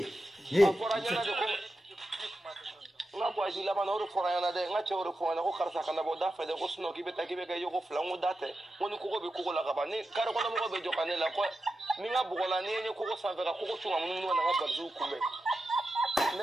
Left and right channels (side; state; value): both; normal; correlation 0.90